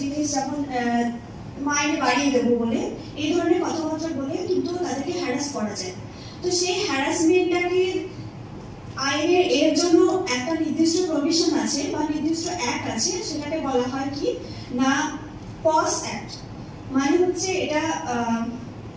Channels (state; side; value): identical; both; correlation 1.00